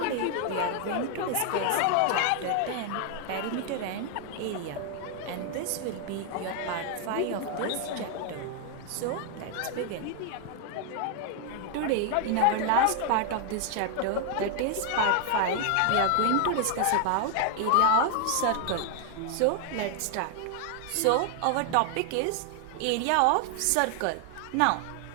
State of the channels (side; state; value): both; different; correlation 0.00